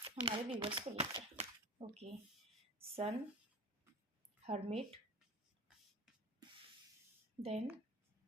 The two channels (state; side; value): normal; both; correlation 0.34